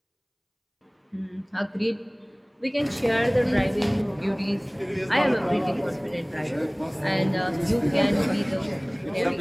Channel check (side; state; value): both; identical; correlation 1.00